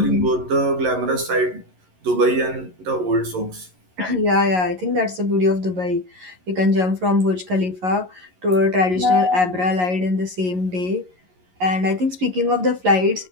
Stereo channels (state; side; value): late; left; 11 ms